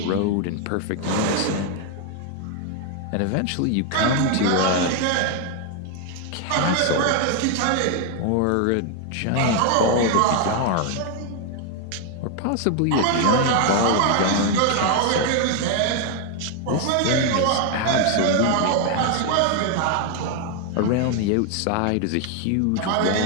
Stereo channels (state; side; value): different; both; correlation 0.01